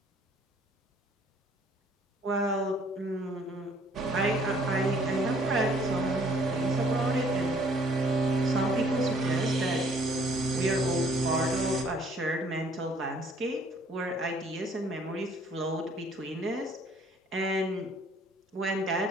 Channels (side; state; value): both; normal; correlation 0.59